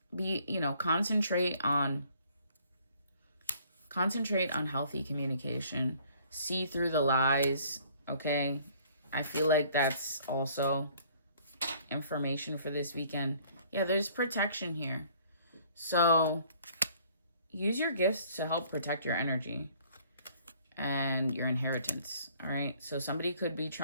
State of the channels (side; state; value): both; inverted; correlation -0.58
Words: concentrate on healthy communication. See through the lies, okay? I feel like that's also information for this weekend. Yeah, there's protection here. So use your gifts to help protect your energy and your inheritance, all right? So somebody could be